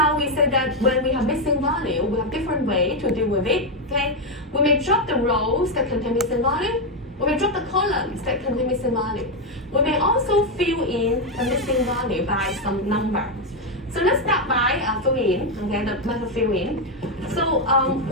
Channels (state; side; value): normal; both; correlation 0.05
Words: we said that when we have missing value, we have different ways to deal with it, okay? We may drop the rows that contain missing value. We may drop the columns that contain missing value. We may also fill in the missing value by some number. So let's start by fill in, okay, the method fill in. So